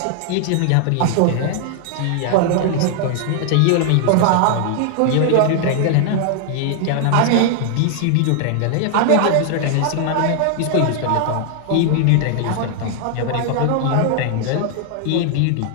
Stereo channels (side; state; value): both; different; correlation 0.00